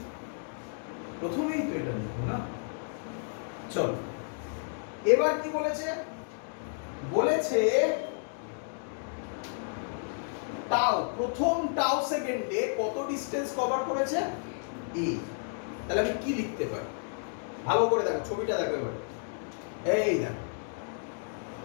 প্রথমেই তো এটা লিখবো না? চলো এবার কি বলেছে? বলেছে টাউ, প্রথম টাউ সেকেন্ডে কত ডিসটেন্স কভার করেছে? a। তাহলে আমি কি লিখতে পারি? ভালো করে দেখো, ছবিটা দেখো এবার। এই দেখো,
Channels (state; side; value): silent; right; digital silence